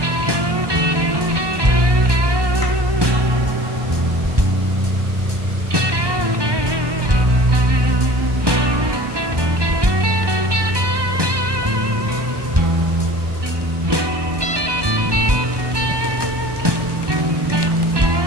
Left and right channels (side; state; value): left; late; 1.2 ms